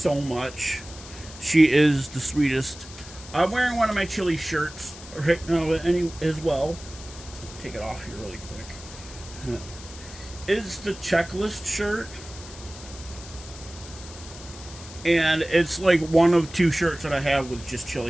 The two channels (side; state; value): left; noise; hiss, 16 dB below the sound